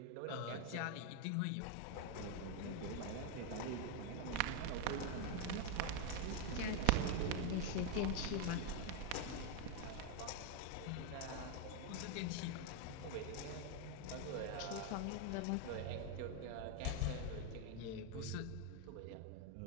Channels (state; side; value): different; both; correlation 0.01